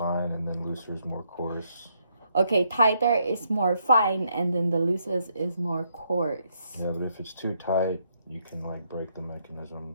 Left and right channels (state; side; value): inverted; both; correlation -0.75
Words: and then looser is more coarse. Okay, tighter is more fine and then the loosest is more coarse. Yeah, but if it's too tight, you can like break the